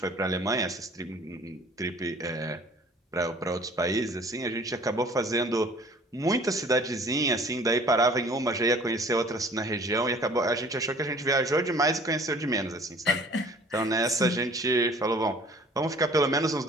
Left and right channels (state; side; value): normal; both; correlation 0.51